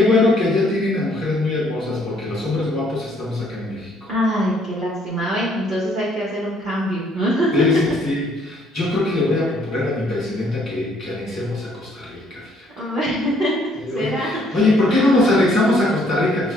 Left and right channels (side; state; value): both; normal; correlation 0.65